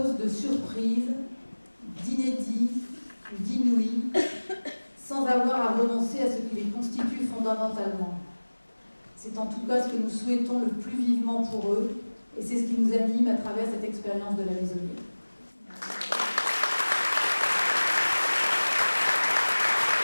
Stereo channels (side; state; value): both; inverted; correlation -1.00